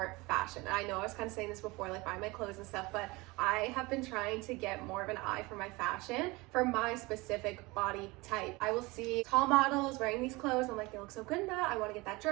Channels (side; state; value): left; quieter; 23.4 dB